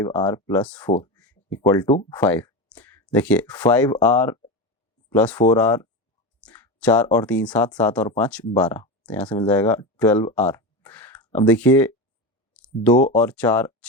plus four equal to 5। देखिए 5r प्लस 4r 4 और 3 7, 7 और 5 12, तो यहाँ से मिल जाएगा 12R। अब देखिए 2 और 4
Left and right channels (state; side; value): normal; both; correlation 0.20